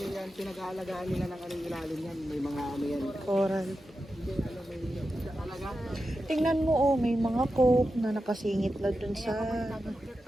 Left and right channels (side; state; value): both; normal; correlation 0.90